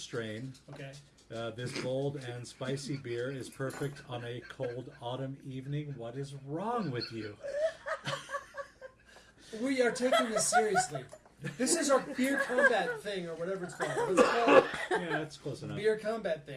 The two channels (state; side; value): identical; both; correlation 1.00